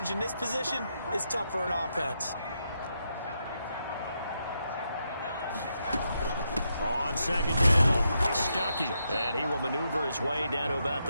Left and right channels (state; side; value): inverted; both; correlation -0.82